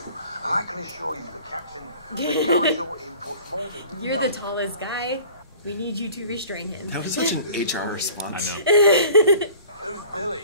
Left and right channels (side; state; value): both; inverted; correlation -0.46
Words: and I can assure you the captain regards your input more than you You're know. the tallest guy. We need you to restrain him. That was such an HR I response. know. Who's Billy?